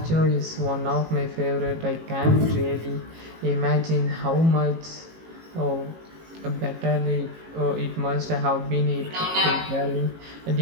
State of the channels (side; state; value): left; late; 18 ms